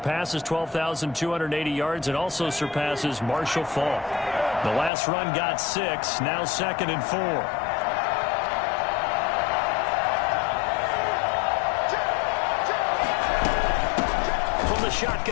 12,280 yards and also surpasses Marshall Faulk. The last run got 6, now 2nd and 4.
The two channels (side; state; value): right; drops out; at 4.9 s